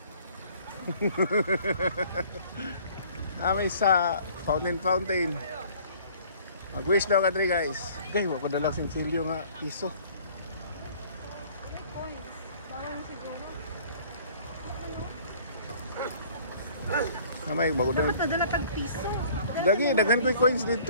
Kami sa fountain. Mag-wish daw ka dre guys. Okay, wako dalang sinsilyo nga piso. Kamay, bago na. Dapat nadala tag piso. Dagi, daghan ko yung coins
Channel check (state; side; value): inverted; both; correlation -0.54